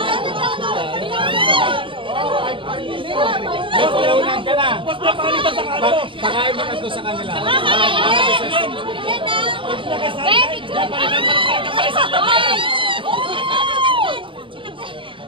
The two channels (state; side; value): late; left; 0.25 ms